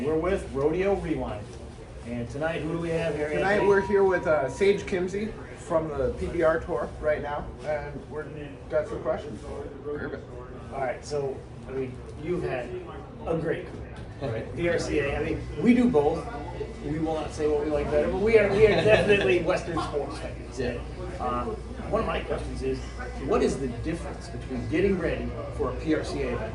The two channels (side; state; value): both; identical; correlation 1.00